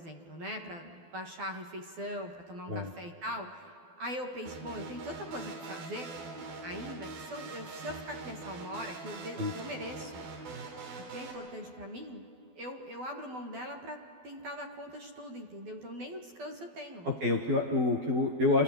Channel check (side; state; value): left; late; 12 ms